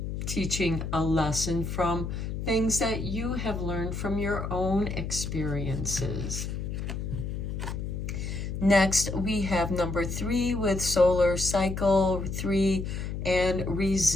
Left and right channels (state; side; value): noise; left; hum, 4 dB below the sound